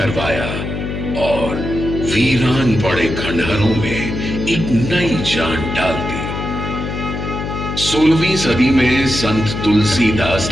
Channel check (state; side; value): noise; left; hum, 5 dB below the sound